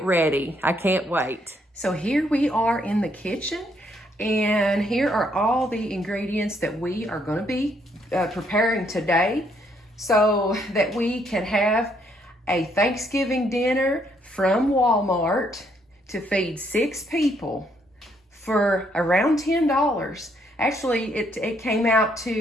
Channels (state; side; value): normal; both; correlation 0.71